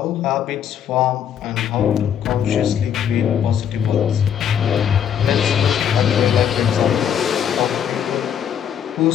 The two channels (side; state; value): right; quieter; 8.9 dB